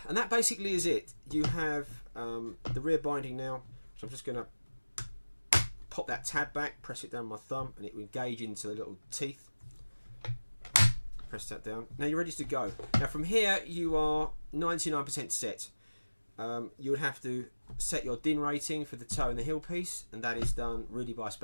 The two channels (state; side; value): inverted; both; correlation -1.00